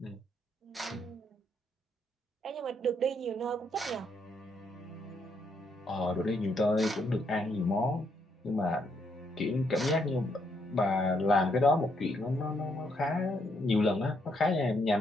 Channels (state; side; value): normal; both; correlation 0.74